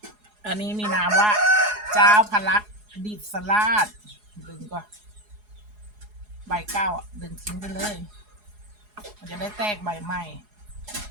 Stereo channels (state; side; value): late; left; 4.8 ms